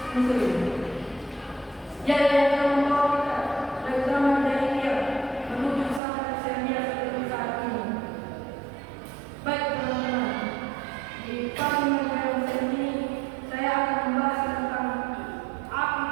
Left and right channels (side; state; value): left; drops out; at 6.0 s